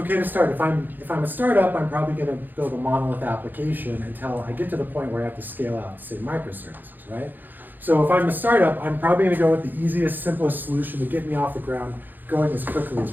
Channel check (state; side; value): late; left; 0.088 ms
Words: to start. If I'm a startup, I'm probably going to build a monolith application until I get to the point where I have to scale out to say microservices, right? So if I'm a startup, I'm probably going to go with the easiest, simplest solution to get me off the ground going as quickly as